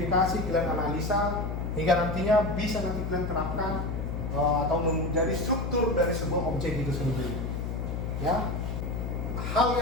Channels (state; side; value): noise; left; hum, 3 dB below the sound